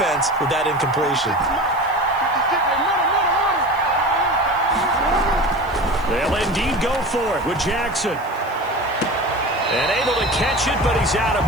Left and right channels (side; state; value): right; noise; hiss, 26 dB below the sound